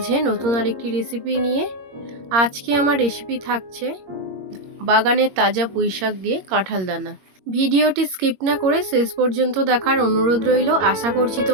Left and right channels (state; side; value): late; left; 21 ms